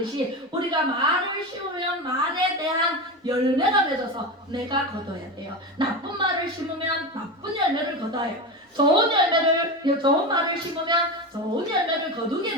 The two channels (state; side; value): normal; both; correlation 0.21